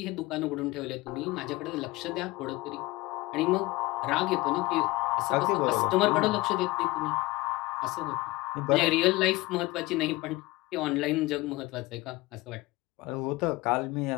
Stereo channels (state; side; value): quieter; right; 20.9 dB